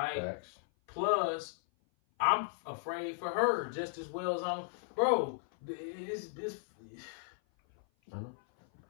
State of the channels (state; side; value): silent; right; 54 dB below the other